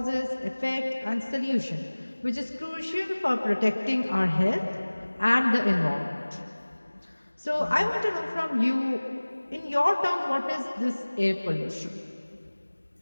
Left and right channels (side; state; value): both; inverted; correlation -1.00